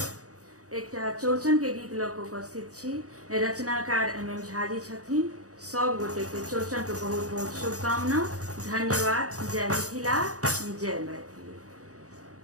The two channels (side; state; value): left; late; 0.66 ms